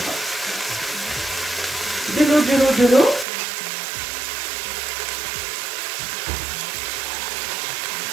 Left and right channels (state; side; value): drops out; left; at 3.2 s